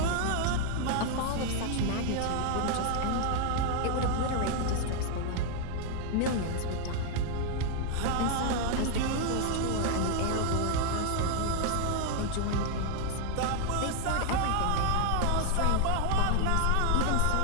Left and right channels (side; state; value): both; different; correlation 0.00